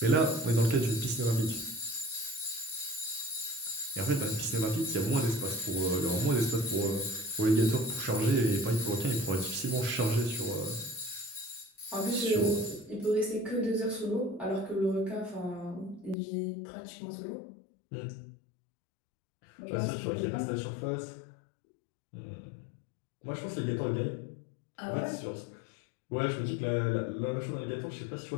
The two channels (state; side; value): drops out; right; at 16.2 s